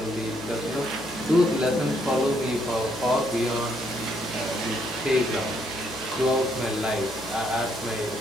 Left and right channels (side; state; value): left; noise; hum, 21 dB below the sound